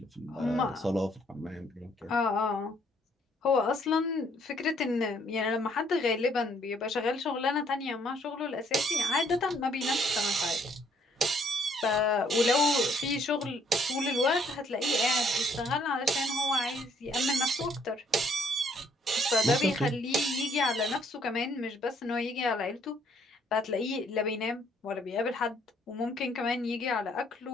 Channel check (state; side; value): normal; both; correlation 0.66